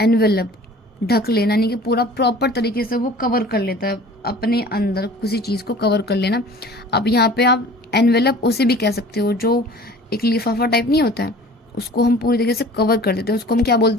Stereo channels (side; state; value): both; normal; correlation 0.46